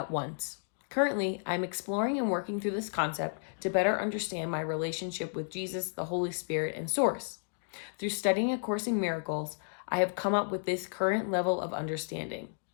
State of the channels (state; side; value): silent; right; digital silence